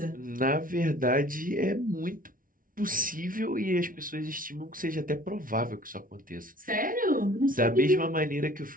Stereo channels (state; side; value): late; left; 0.40 ms